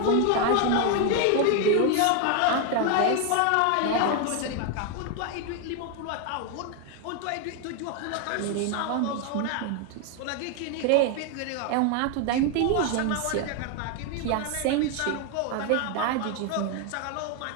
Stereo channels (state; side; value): different; both; correlation 0.01